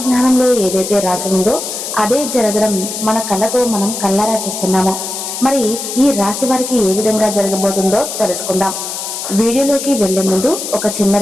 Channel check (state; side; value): noise; left; hiss, 6 dB below the sound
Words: ఏదైతే రాసి ఉందో అదే జరగడం మన కళ్ళతో మనం కళ్ళారా చూస్తున్నాము. మరి ఈ రాశి వారికి ఏ విధంగా జరగబోతుందో తెలుసుకుందాం. వీడియోలోకి వెళ్లే ముందు ఒక చిన్న